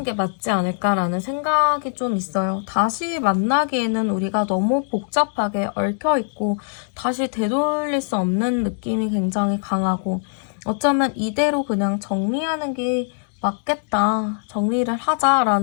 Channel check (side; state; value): right; silent; digital silence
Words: 게 맞지 않을까라는 생각이 좀 있어요. 다시 만나기에는 우리가 너무 복잡하게 얽혀있고 다시 되돌릴 수 없는 느낌이 굉장히 강하고 어쩌면 이대로 그냥 정리하는 게 맞겠다. 정리를